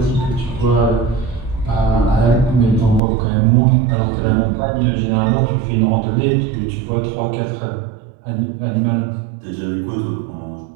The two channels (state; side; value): drops out; left; at 3.0 s